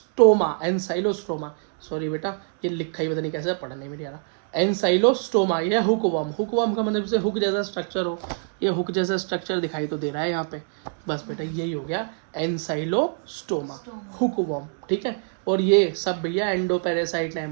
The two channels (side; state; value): left; silent; digital silence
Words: सॉरी बेटा ये लिखा ही पता नहीं कैसे, पढ़ने में नहीं आ रहा। एनसाइलोस्टोमा ये हुक वर्म। हुक वर्म का मतलब से हुक जैसा स्ट्रक्चर हो, ये हुक जैसा स्ट्रक्चर दिखाई तो दे रहा है यहाँ पे। बस बेटा यही हो गया एनसाइलोस्टोमा, हुक वर्म। ठीक है, और ये सब भैया एंडोपैरासाइट है,